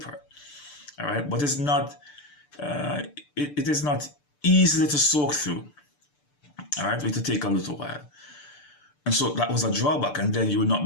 All right, but it's not. It is not easily to soak through. All right, it will take a little while, and so that was a drawback. And then you would not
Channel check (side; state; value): right; late; 6.8 ms